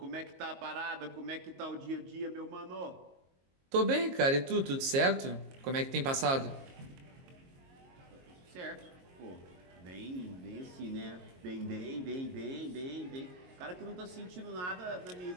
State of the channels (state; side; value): late; left; 22 ms